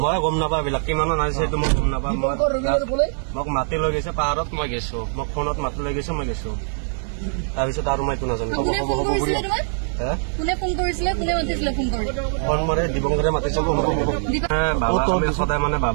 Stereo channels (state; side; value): silent; left; 64 dB below the other